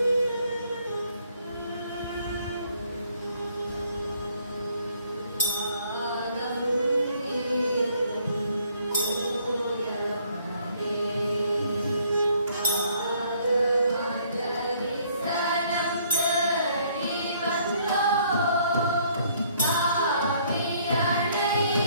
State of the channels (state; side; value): inverted; both; correlation -0.64